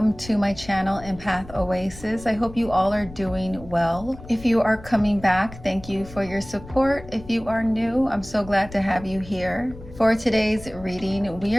to my channel EmpathOasis. I hope you all are doing well. If you are coming back, thank you for your support. If you are new, I'm so glad to have you here. For today's reading, we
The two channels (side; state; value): left; noise; rumble, 17 dB below the sound